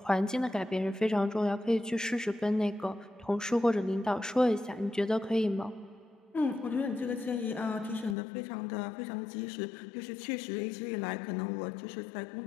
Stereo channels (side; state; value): right; drops out; at 8.2 s